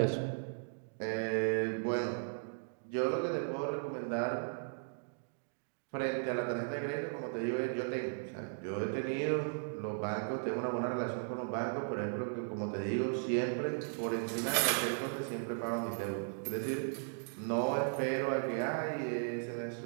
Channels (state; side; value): silent; left; digital silence